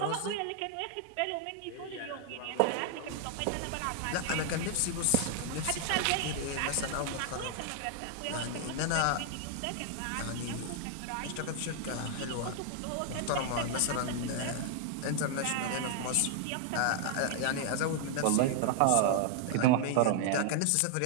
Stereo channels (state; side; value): different; both; correlation 0.00